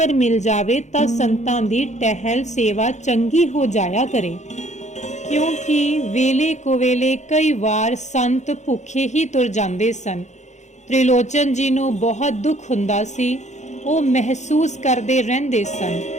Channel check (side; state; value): right; late; 0.34 ms